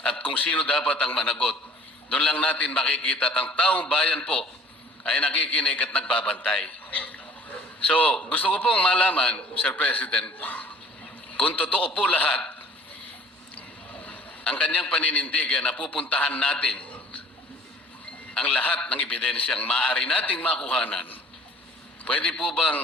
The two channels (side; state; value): both; normal; correlation 0.51